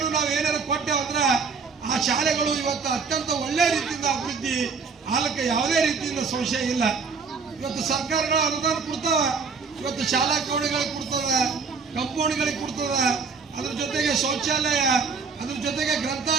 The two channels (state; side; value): quieter; left; 5.2 dB